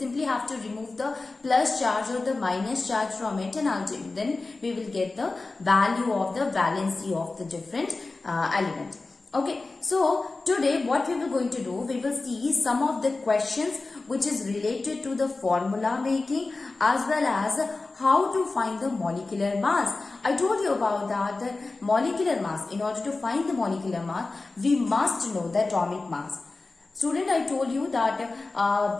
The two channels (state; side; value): quieter; right; 3.5 dB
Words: have to remove the plus charge or the minus charge from it, and ultimately then we will get the value of the valency of the different element. Okay, so today what we were going to do, we will see some of the questions which is related to the formula making, as well as how to find the molecular mass. I told you about that the molecular mass. In order to find the molecular mass, we must know the atomic mass. Student, I told you that